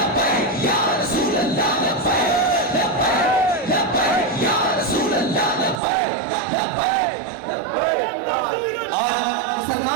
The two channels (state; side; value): drops out; left; at 5.8 s